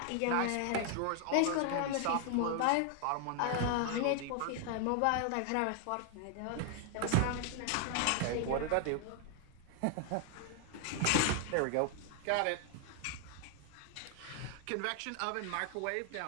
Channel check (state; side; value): different; both; correlation 0.00